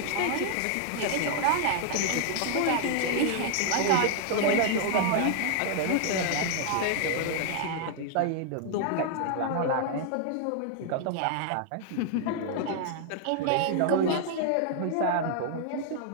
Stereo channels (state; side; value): different; both; correlation 0.00